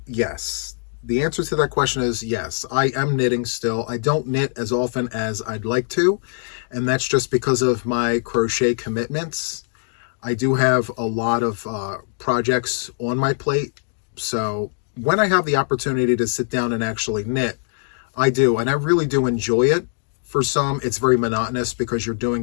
Yes. The answer to that question is yes, I am knitting still. I don't knit as often as I'd like to, and that's just because of my crochet commitments. I do have a lot of projects on my plate, so when I have the opportunity to sit down and actually knit, I do, and I really do enjoy it. For some, it's very monotonous because you're doing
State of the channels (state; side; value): silent; right; digital silence